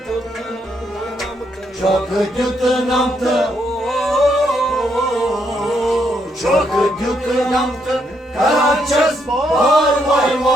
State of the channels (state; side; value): normal; both; correlation 0.75